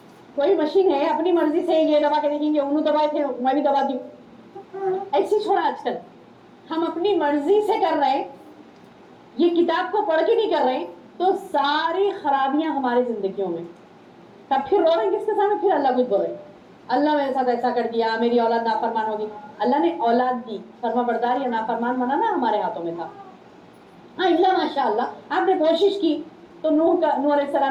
کوئی مشین ہے اپنی مرضی سے یہ دبا کے دیکھیں گے، انہوں دبائے تھے میں بھی دباتی ہوں، ایسی چھوڑا. آج کل ہم اپنی مرضی سے کر رہے ہیں، یہ کتاب کو پڑھ کے نہیں کر رہے، تو ساری خرابیاں ہماری زندگیوں میں. تب پھر رو رہے ہیں کس کے سامنے، پھر اللہ کچھ بول رہے، اللہ میرے ساتھ ایسا کر دیا، میری اولاد نافرمان ہوگی. اللہ نے اولاد دی، فرما بردار یا نافرمان بنانا ہمارے ہاتھوں میں تھا. ہاں اللہ ماشاء اللہ آپ نے کوشش کی تو نوح علیہ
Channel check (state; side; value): identical; both; correlation 1.00